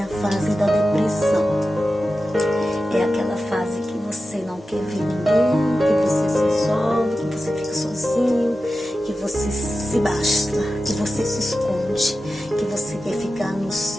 a fase da depressão. É aquela fase que você não quer ver ninguém, que você se isola, que você fica sozinho, que você se basta, que você se esconde, que você quer ficar no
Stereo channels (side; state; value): both; normal; correlation 0.93